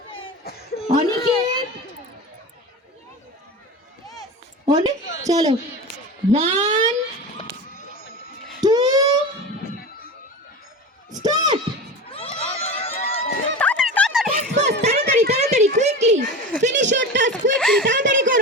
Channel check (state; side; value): normal; both; correlation 0.29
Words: অনিকেত অনেক চলো 1 2 স্টার্ট তাড়াতাড়ি তাড়াতাড়ি quickly finish your task quickly তাড়াতাড়ি